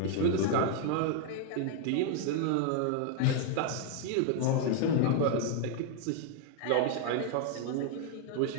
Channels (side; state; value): both; different; correlation 0.00